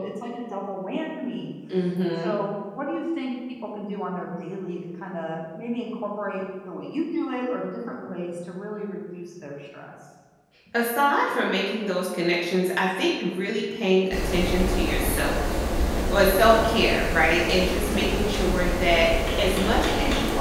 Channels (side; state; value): both; identical; correlation 1.00